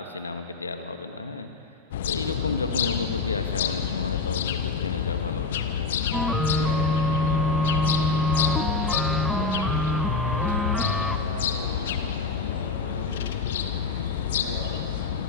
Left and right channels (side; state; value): right; quieter; 4.1 dB